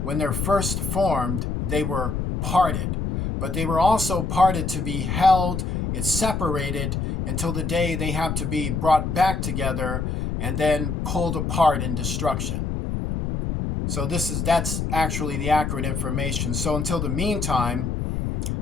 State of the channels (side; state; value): left; noise; rumble, 2 dB below the sound